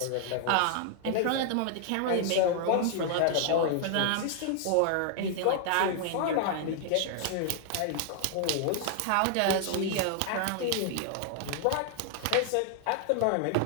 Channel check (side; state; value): both; different; correlation 0.00